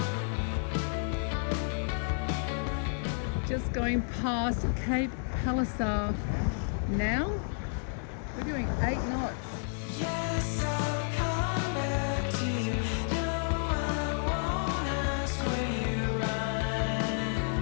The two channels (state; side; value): silent; right; 57 dB below the other